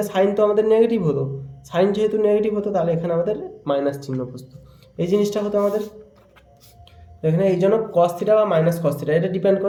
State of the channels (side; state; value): both; identical; correlation 1.00